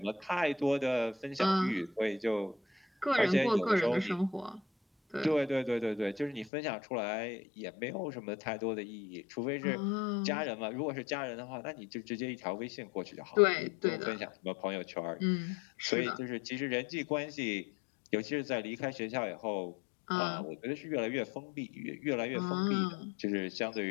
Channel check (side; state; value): right; drops out; at 6.5 s